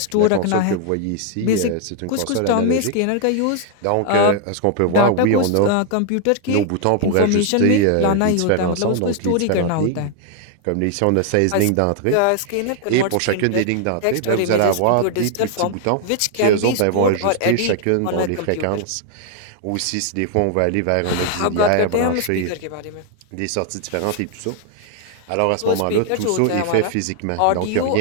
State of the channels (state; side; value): different; both; correlation 0.00